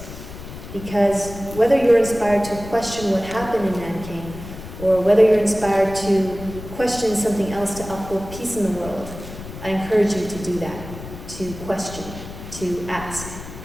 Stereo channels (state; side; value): noise; left; rumble, 12 dB below the sound